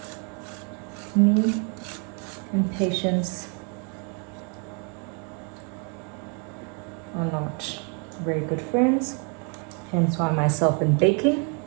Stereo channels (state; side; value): quieter; left; 37.1 dB